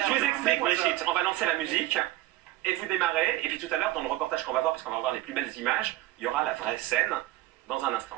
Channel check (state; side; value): quieter; left; 16.2 dB